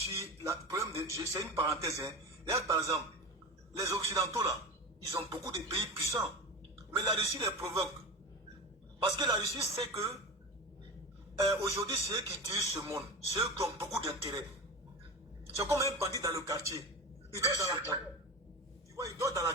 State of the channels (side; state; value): both; normal; correlation 0.28